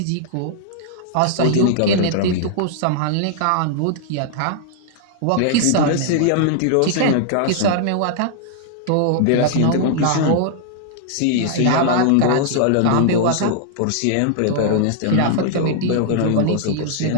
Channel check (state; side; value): different; both; correlation -0.01